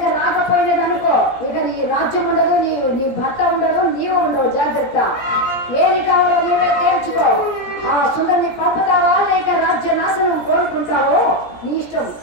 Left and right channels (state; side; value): late; right; 17 ms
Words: రాకపోయినదనుకో, ఇక నీ రాజ్యం ఉండదు, నీ భర్త ఉండదు, నీవు ఉండవు. జాగ్రత్త, ఏది కావాలో నీవే తేల్చుకో. ఆ సుందరిని పంపుతావా లేక రాజ్య నాశనం కోరుకుంటావో నీ ఇష్టం,